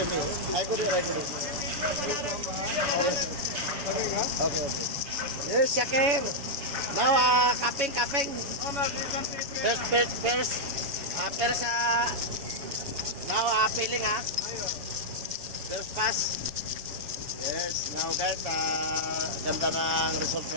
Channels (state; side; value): late; left; 7.1 ms